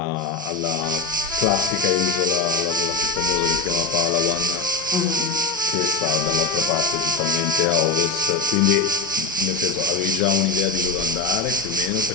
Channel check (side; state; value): right; quieter; 4.0 dB